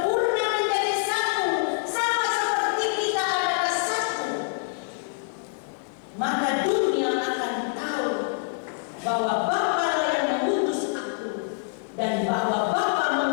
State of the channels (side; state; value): right; silent; 61 dB below the other